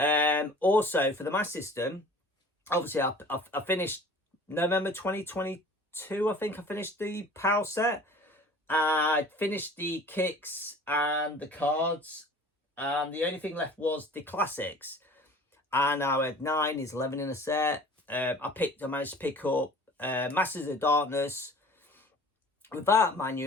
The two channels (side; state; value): both; normal; correlation 0.46